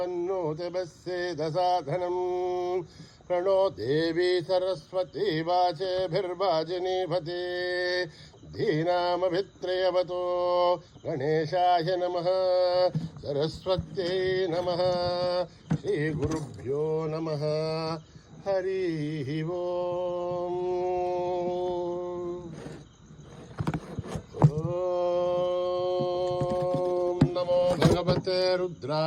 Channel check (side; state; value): both; identical; correlation 1.00